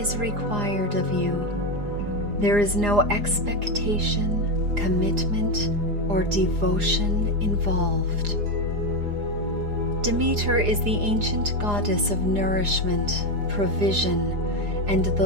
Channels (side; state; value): left; late; 4.9 ms